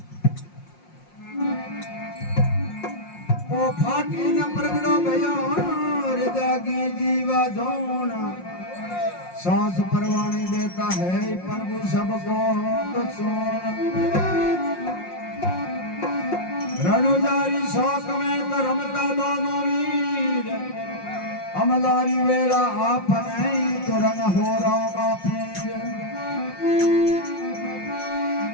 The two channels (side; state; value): right; late; 5.6 ms